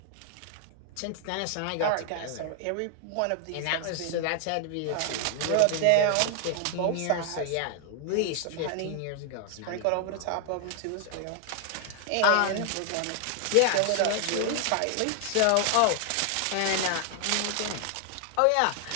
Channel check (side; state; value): both; different; correlation 0.00